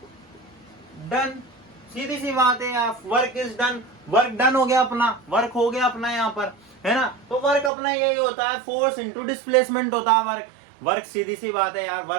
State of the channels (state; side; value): drops out; left; at 7.7 s